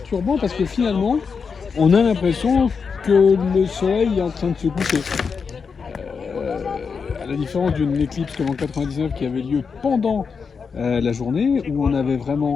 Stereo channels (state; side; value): quieter; right; 5.6 dB